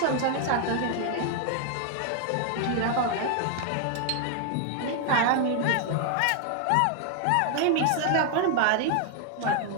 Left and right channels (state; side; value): different; both; correlation 0.00